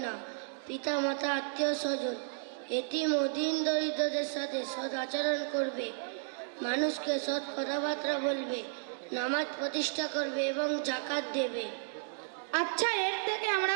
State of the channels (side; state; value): left; silent; digital silence